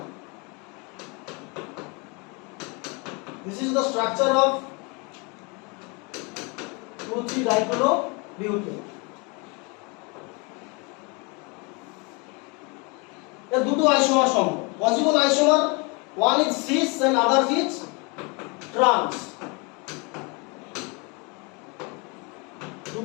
This is the structure of 2,3 dichlorobutene. এর দুটো isomer সম্ভব। Possible isomer, one is cis and other is trans.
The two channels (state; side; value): quieter; right; 30.4 dB